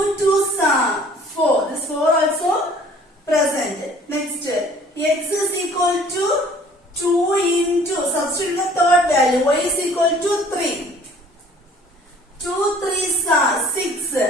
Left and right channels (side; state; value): both; normal; correlation 0.53